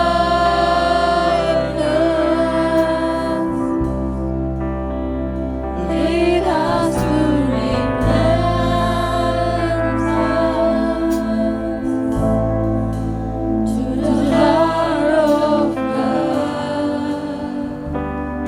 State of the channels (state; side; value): identical; both; correlation 1.00